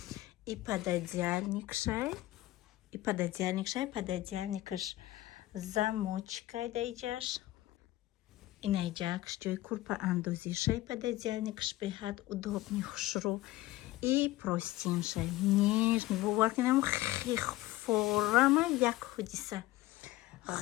и пододеяльникшай пододеяльникаш замочкой даиҷаш. инаиҷакш ҷои курпа андозишай пододеяльникаш беҳад удобный хушрӯ. и простиншай нежный боваркунам хехфорама як ҳодиса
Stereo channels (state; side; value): quieter; right; 17.0 dB